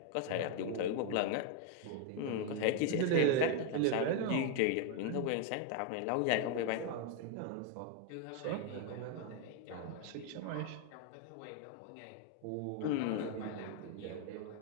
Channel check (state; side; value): different; both; correlation 0.01